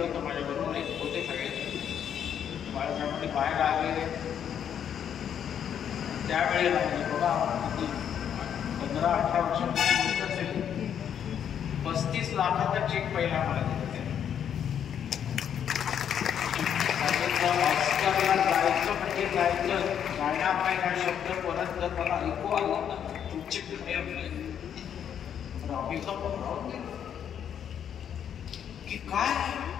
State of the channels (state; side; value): quieter; right; 8.8 dB